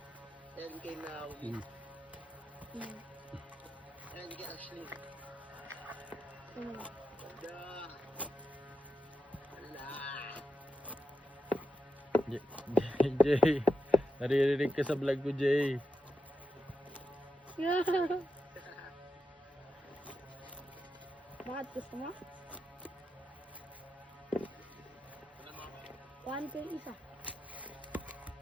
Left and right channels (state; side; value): normal; both; correlation 0.87